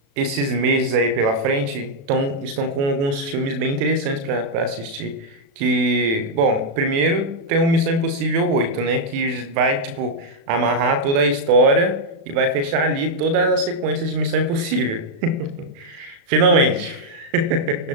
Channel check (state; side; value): late; left; 36 ms